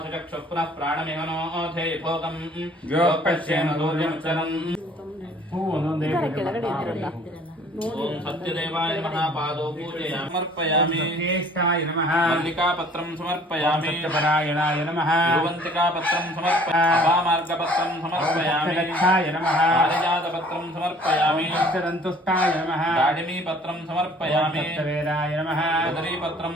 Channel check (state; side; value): normal; both; correlation 0.54